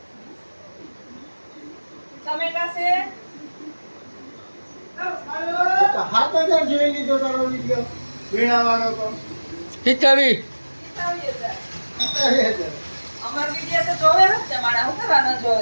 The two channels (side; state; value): both; inverted; correlation -1.00